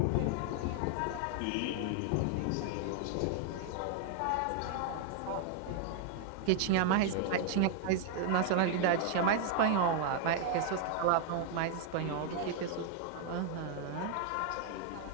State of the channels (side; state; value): both; different; correlation 0.00